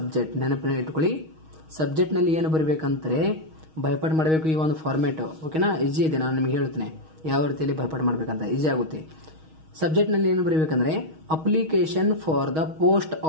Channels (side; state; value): left; late; 6.3 ms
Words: ನೆನಪಿನ ಇಟ್ಕೊಳ್ಳಿ, ಸಬ್ಜೆಕ್ಟ್ ನಲ್ಲಿ ಏನು ಬರೀಬೇಕಂದ್ರೆ ಭಯಪಾಠ ಮಾಡಬೇಕು. ಈ ಒಂದು ಫಾರ್ಮೆಟ್ ಓಕೆನಾ, ಈಜಿ ಇದೆ. ನಾನು ನಿಮ್ಗೆ ಹೇಳ್ತೇನೆ ಯಾವ ರೀತಿಯಲ್ಲಿ ಭಯಪಾಠ ಮಾಡ್ಬೇಕಂತ, ಈಜಿ ಆಗುತ್ತೆ. ಸಬ್ಜೆಕ್ಟ್ ನಲ್ಲಿ ಏನು ಬರೀಬೇಕಂದ್ರೆ application for the post